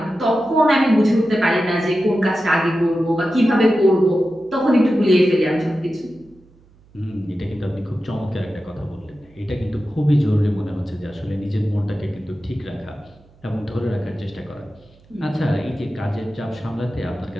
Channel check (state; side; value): noise; right; hum, 29 dB below the sound